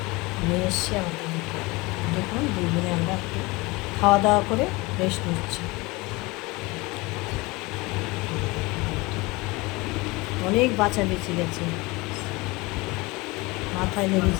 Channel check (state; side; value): quieter; right; 23.7 dB